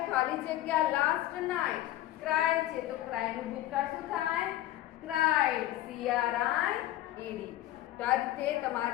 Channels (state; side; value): quieter; right; 14.7 dB